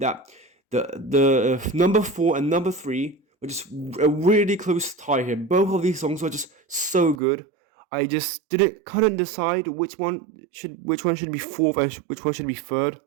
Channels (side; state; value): left; drops out; at 7.2 s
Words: the number 4 and number 3 were just a really close tie here. Both of these songs were just so good. I just couldn't decide which one should be fourth and which one should be third.